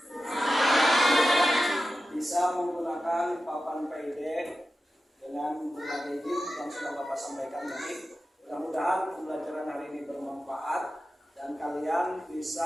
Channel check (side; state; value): both; normal; correlation 0.92